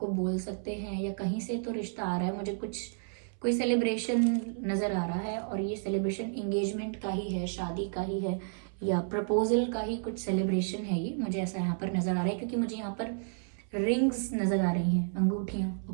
बोल सकते हैं, या कहीं से तो रिश्ता आ रहा है। मुझे कोई सेलिब्रेशन नज़र आ रहा है, और ये सेलिब्रेशन एंगेजमेंट का ही है, शादी का ही है, या प्रपोजल का ही कुछ सेलिब्रेशन है। ये मुझे ऐसा यहाँ पर नज़र आ रहा है, क्योंकि मुझे यहाँ पर रिंग्स नज़र आ रही हैं, अंगूठियाँ।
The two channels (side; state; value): left; silent; 57 dB below the other